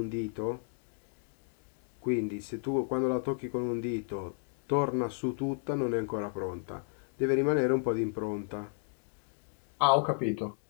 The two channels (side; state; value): right; silent; 56 dB below the other